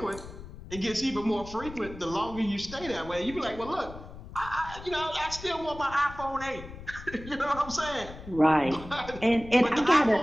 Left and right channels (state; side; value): noise; left; rumble, 14 dB below the sound